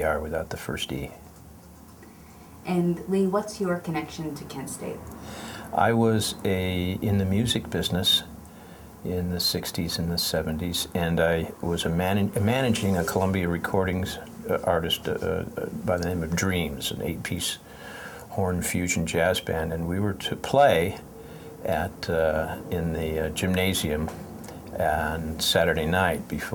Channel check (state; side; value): identical; both; correlation 1.00